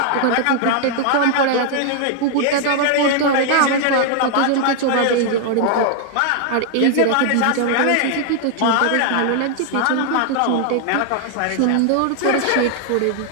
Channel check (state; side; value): different; both; correlation 0.00